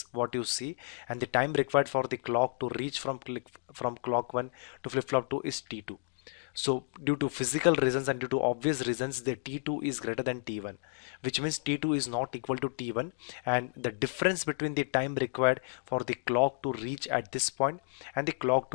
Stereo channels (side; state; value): right; silent; digital silence